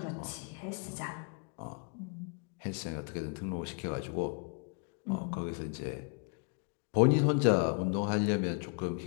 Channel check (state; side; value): quieter; right; 38.6 dB